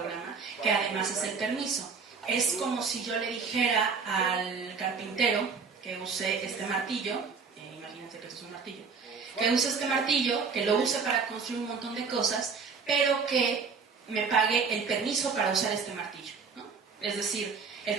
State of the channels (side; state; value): left; quieter; 5.3 dB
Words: que además es el permiso. Es como si yo le dijera al carpintero que use este martillo, imagínense que esto es un martillo, que use este martillo, que lo use para construir un montón de cosas, pero que me pague el permiso para usar este martillo, ¿no? Es decir, el